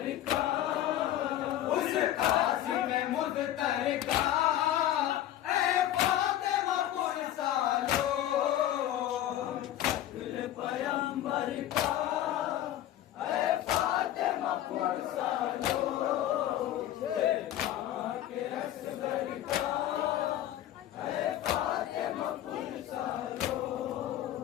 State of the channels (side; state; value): right; quieter; 12.6 dB